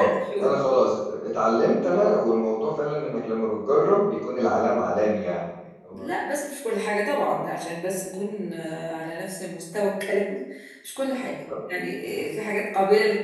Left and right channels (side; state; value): both; identical; correlation 1.00